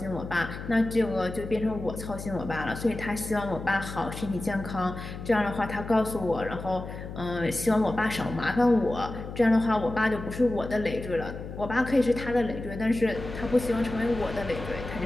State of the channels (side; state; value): left; noise; hum, 10 dB below the sound